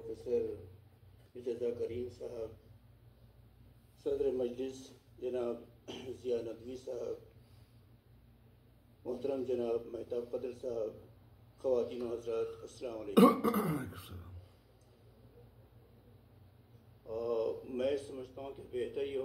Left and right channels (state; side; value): identical; both; correlation 1.00